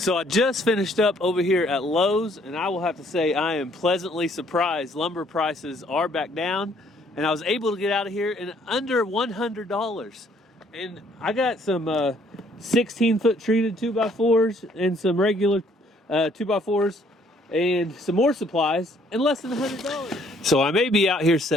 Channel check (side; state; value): both; normal; correlation 0.63